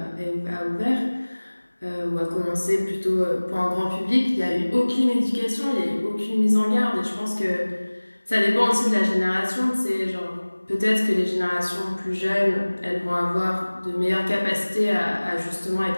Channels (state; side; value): inverted; both; correlation -1.00